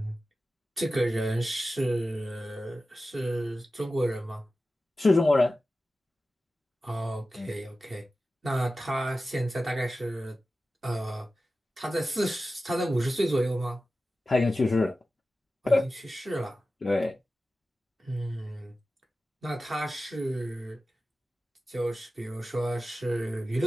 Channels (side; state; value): both; normal; correlation 0.94